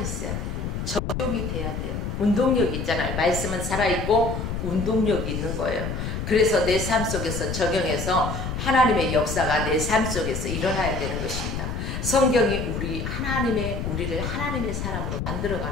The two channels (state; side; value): noise; left; rumble, 4 dB below the sound